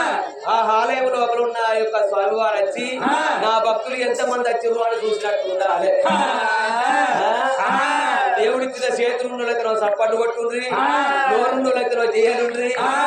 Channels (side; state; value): both; identical; correlation 1.00